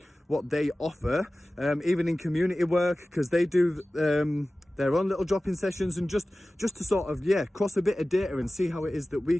what they offer, even in community work, because they do their own little drop-in sessions, and just to sort of, yeah, cross a bit of data and see how it is that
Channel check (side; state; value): both; normal; correlation 0.96